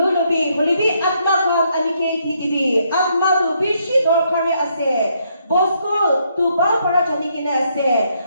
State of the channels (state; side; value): inverted; both; correlation -0.73